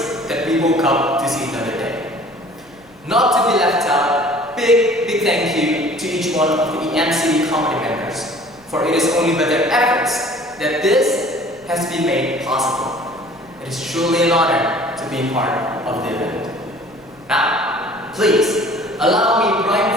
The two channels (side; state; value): left; noise; rumble, 29 dB below the sound